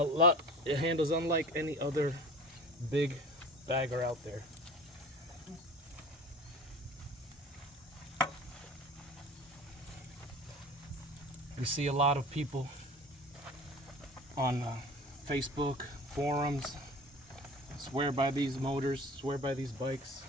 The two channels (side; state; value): both; normal; correlation 0.40